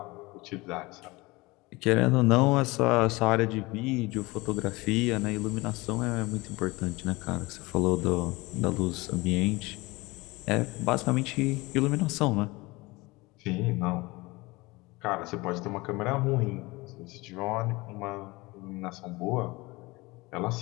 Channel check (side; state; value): right; quieter; 22.8 dB